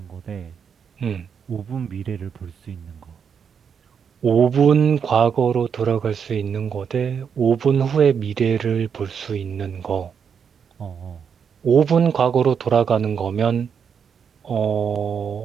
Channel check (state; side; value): quieter; left; 7.1 dB